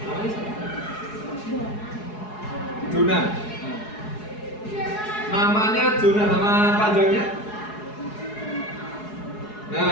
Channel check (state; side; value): late; right; 4.7 ms